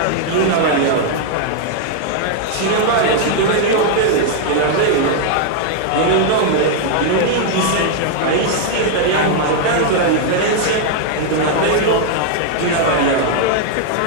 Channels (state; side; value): different; both; correlation 0.00